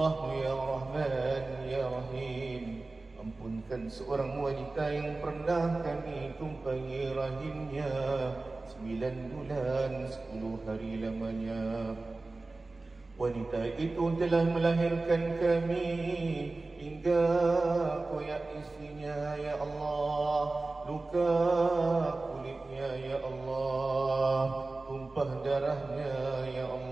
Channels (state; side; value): quieter; left; 3.3 dB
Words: Ya Rahman, Ya Rahim, ampunkan seorang wanita yang pernah kami tumpangi rahimnya 9 bulan 10 hari lamanya. Wanita itu telah melahirkan kami hingga koyak isinya, Ya Allah. Luka kulitnya, Ya Allah. Tumpah darahnya, Ya